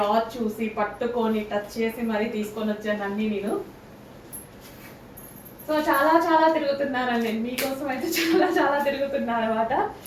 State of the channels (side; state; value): both; identical; correlation 1.00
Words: చూసి పట్టుకొని టచ్ చేసి మరీ తీసుకొని వచ్చాను అన్నీ నేను. సో చాలా తిరుగుతున్నానండి నేను మీకోసం అయితే. చాలా తిరుగుతున్నాను అనమాట.